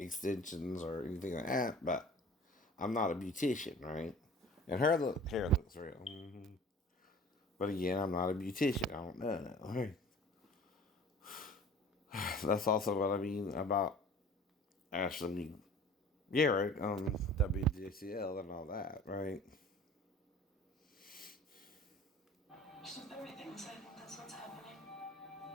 or anything like that, but I'm not a beautician, right? And hair looks real. But again, I'm not a beautician. I don't know. Right? That's also what I mean about Ashley Garrett on WJCL and all that, right? Just with everything, so I think that's what's happening.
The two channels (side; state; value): both; normal; correlation 0.45